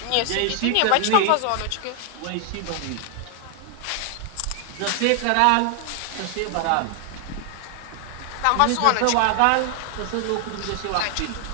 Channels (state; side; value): different; both; correlation 0.00